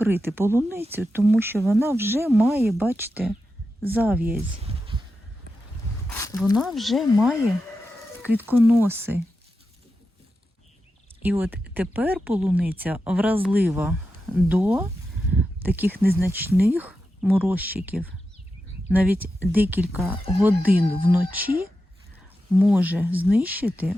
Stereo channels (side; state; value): both; normal; correlation 0.89